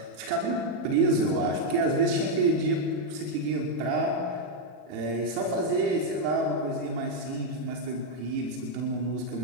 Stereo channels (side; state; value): left; late; 40 ms